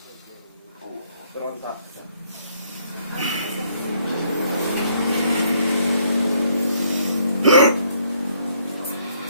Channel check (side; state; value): both; inverted; correlation -0.68